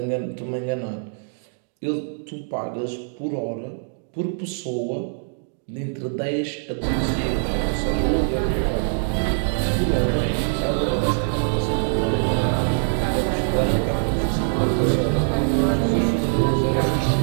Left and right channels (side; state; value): left; silent; digital silence